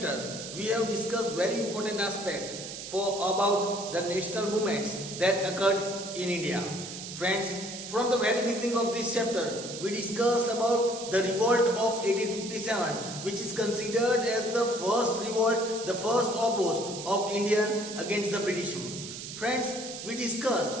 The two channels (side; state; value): right; noise; hiss, 9 dB below the sound